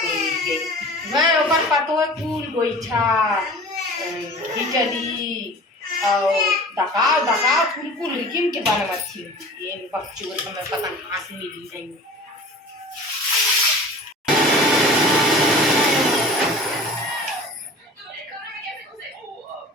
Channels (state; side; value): normal; both; correlation 0.41